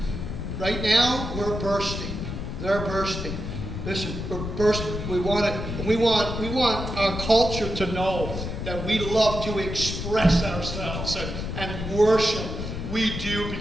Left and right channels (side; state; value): left; noise; rumble, 5 dB below the sound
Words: Right now, we're bursting. They're bursting. Listen, we're bursting. We want our culture to know that we love to express ourselves and worship. We do